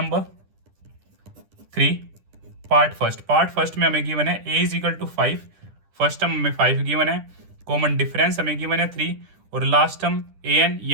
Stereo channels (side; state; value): left; late; 10 ms